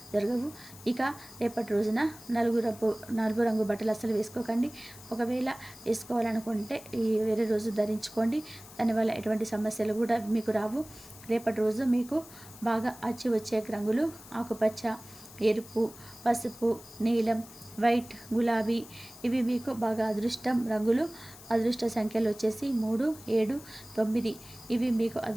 జరగవు. ఇక రేపటి రోజున నలుగు రంగు బట్టలు అస్సలు వేసుకోకండి. ఒకవేళ వేసుకోవాలనుకుంటే వేరే రోజు ధరించుకోండి. దానివల్ల ఎటువంటి సమస్యలు కూడా మీకు రావు. రేపటి రోజు మీకు బాగా అచ్చి వచ్చే రంగులు ఆకుపచ్చ, ఎరుపు, పసుపు, నీలం, వైట్, గులాబీ ఇవి మీకు బాగా అదృష్టం రంగులు. అదృష్ట సంఖ్యలు వచ్చేసి 3, 7, 9 ఇవి మీకు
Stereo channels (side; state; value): left; noise; hiss, 19 dB below the sound